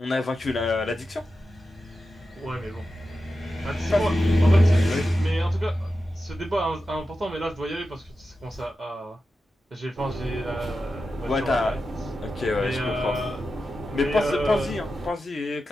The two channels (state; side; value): normal; both; correlation 0.91